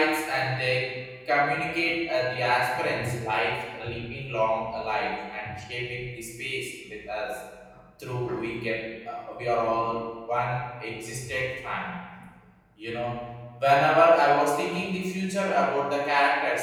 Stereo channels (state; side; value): identical; both; correlation 1.00